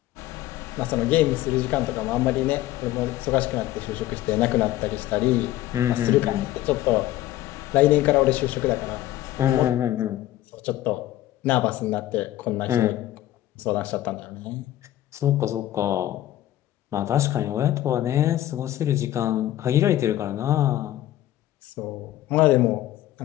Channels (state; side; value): quieter; right; 14.2 dB